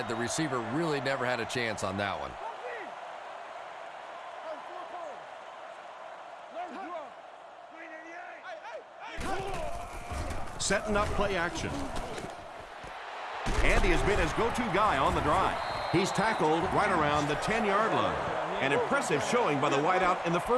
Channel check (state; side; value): identical; both; correlation 1.00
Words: The receiver really never had a chance on that one. Setting up play action. And he has been his go-to guy on the drive. He's tackled right around the 10-yard line. An impressive showing by the wideout in the